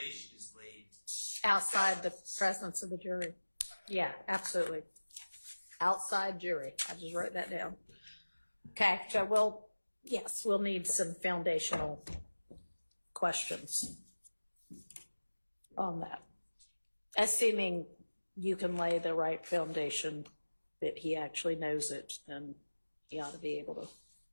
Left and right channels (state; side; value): inverted; both; correlation -1.00